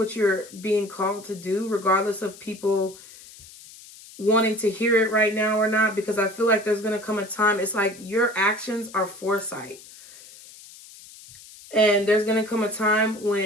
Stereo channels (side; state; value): left; noise; hiss, 20 dB below the sound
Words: you're being called to do, regardless of people wanting to hear it right now or not, because I feel like there's going to come a time, it's like your actions are foresight. And there's going to come a time